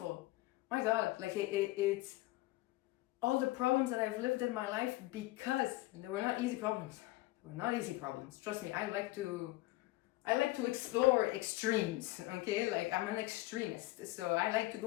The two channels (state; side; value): quieter; right; 18.9 dB